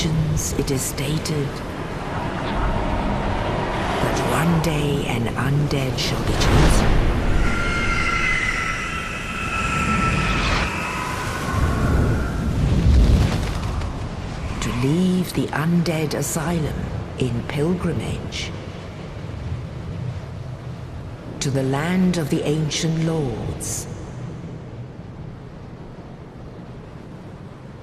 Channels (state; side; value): identical; both; correlation 1.00